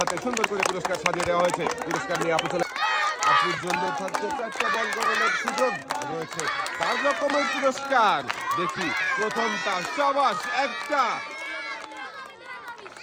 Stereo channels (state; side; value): identical; both; correlation 1.00